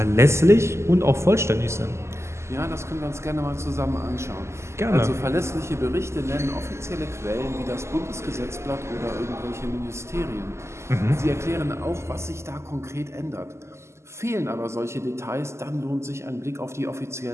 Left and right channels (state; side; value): late; left; 0.13 ms